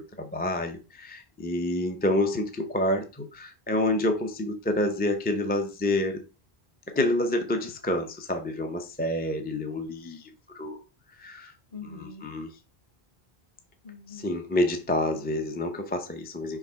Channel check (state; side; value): normal; both; correlation 0.32